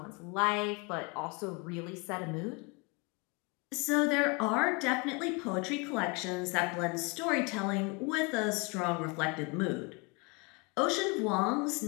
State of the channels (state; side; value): quieter; right; 29.2 dB